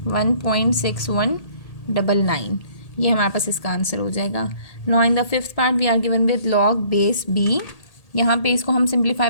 ये हमारे पास इसका आंसर हो जाएगा। Now in the fifth part we are given with log base b। यहाँ पे इसको हम सिंप्लीफाई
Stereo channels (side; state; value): right; late; 1.8 ms